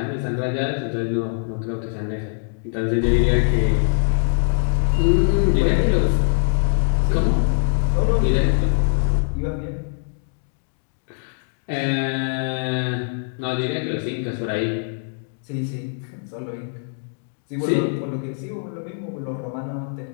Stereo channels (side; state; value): right; silent; digital silence